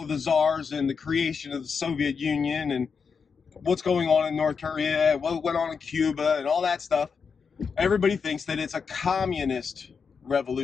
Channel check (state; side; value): quieter; right; 5.8 dB